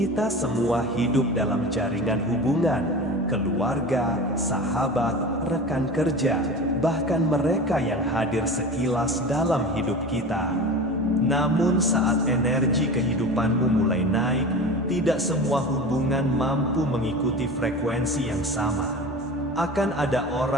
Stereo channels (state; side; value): normal; both; correlation 0.32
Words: semua hidup dalam jaringan hubungan, keluarga, sahabat, rekan kerja, bahkan mereka yang hadir sekilas dalam hidup kita. Namun saat energi kehidupanmu mulai naik, tidak semua hubungan mampu mengikuti frekuensi yang sama. Akan ada